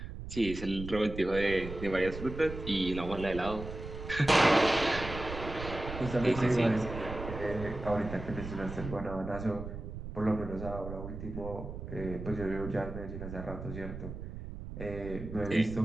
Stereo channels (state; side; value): noise; right; rumble, 9 dB below the sound